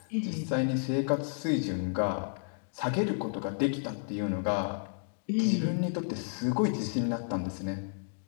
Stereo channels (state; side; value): silent; right; digital silence